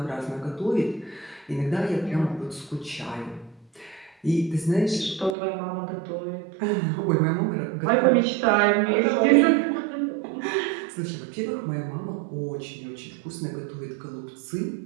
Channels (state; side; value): drops out; left; at 5.4 s